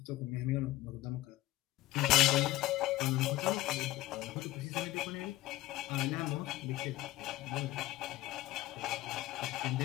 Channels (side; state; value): right; quieter; 17.1 dB